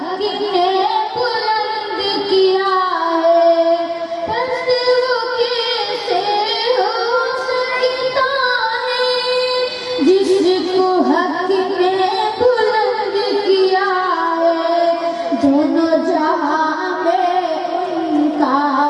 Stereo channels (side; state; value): both; identical; correlation 1.00